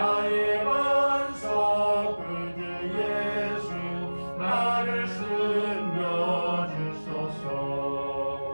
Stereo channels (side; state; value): both; inverted; correlation -1.00